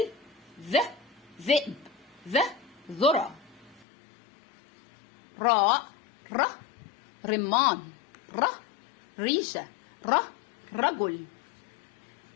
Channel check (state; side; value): drops out; right; at 3.9 s